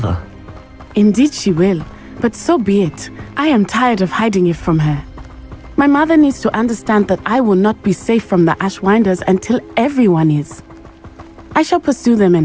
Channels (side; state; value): both; identical; correlation 1.00